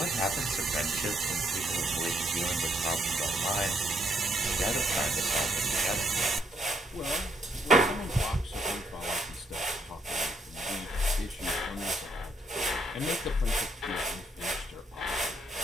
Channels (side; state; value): both; normal; correlation 0.72